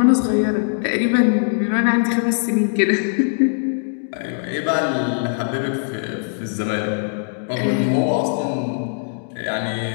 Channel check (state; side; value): silent; right; digital silence